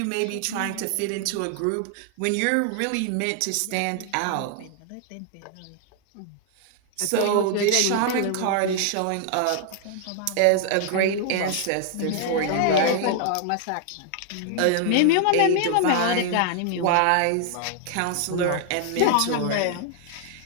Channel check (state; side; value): different; both; correlation 0.00